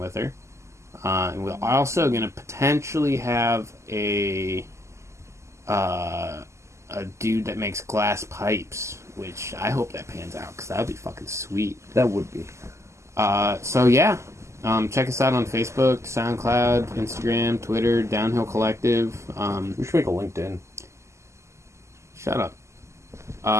her. And we're also gonna potentially have a dude that makes glass pipes, which I hope that pans out because that would be fucking sweet. That would be. So yeah, check us out on Facebook, SoundCloud, Instagram, Twitter, Downhill Collective. We should make a LinkedIn. Shut up.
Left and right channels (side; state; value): left; late; 0.13 ms